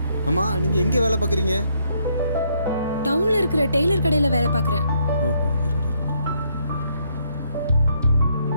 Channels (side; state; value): both; inverted; correlation -0.72